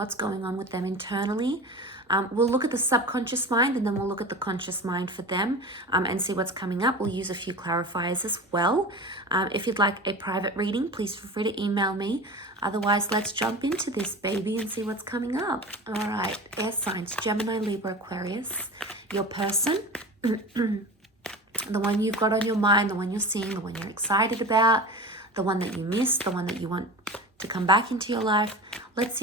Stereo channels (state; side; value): normal; both; correlation 0.32